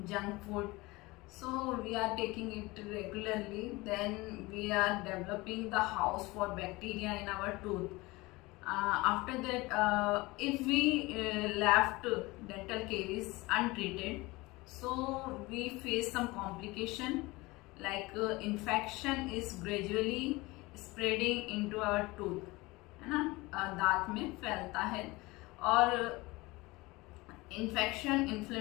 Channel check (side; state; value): right; quieter; 22.1 dB